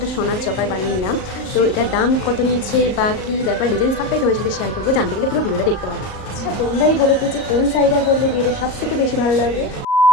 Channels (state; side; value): late; right; 39 ms